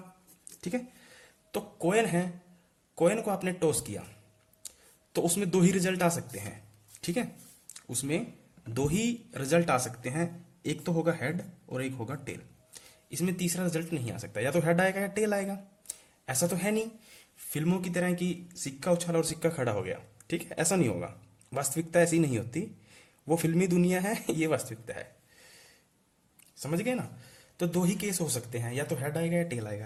ठीक है। तो कॉइन है, कॉइन को आपने टॉस किया तो उसमें दो ही रिजल्ट आ सकते हैं, ठीक है। उसमें दो ही रिजल्ट आ सकते हैं, एक तो होगा हेड और एक होगा टेल। इसमें तीसरा रिजल्ट नहीं आ सकता, या तो हेड आएगा या टेल आएगा। ऐसा तो है नहीं फिल्मों की तरह कि सिक्का उछाला और सिक्का खड़ा हो गया, ठीक है, ऐसा नहीं होगा। वास्तविकता ऐसी नहीं होती, वो फिल्मी दुनिया है, ये वास्तविकता है। समझ गए ना। तो दो ही केस हो सकते हैं, या तो हेड आएगा या टेल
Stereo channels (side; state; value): both; identical; correlation 1.00